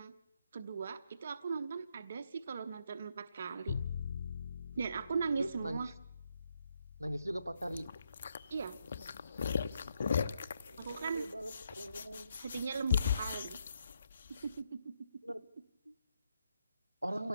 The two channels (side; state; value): both; inverted; correlation -0.78